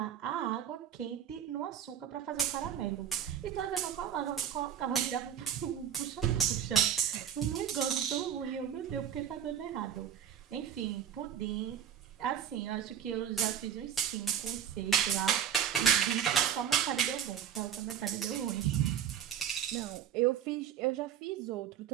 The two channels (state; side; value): quieter; left; 9.3 dB